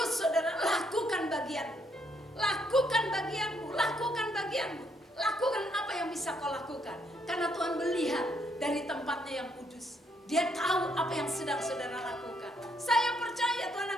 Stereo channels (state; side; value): normal; both; correlation 0.73